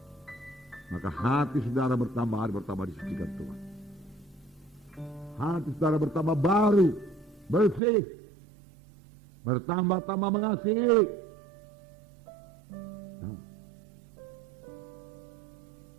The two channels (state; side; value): drops out; left; at 7.8 s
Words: Maka hati saudara bertambah hari bertambah disucikan Tuhan. Hati saudara bertambah baru, bersih, bertambah-tambah mengasihi.